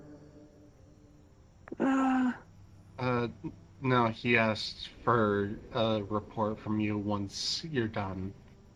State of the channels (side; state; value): both; identical; correlation 1.00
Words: No, he asked for a report from you once you're done.